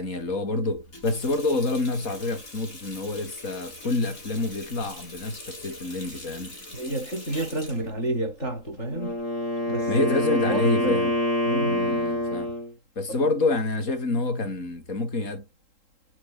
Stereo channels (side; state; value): right; late; 3.8 ms